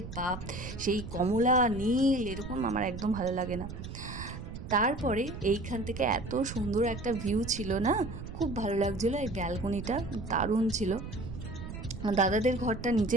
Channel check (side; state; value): right; noise; rumble, 9 dB below the sound